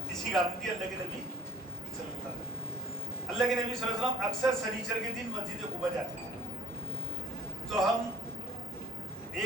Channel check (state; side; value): noise; right; hum, 25 dB below the sound